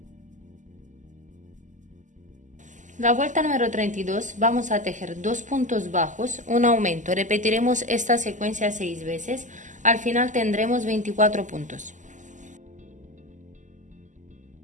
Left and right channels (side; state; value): left; late; 0.37 ms